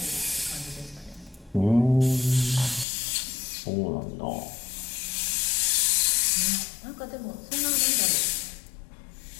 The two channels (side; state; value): right; drops out; at 2.9 s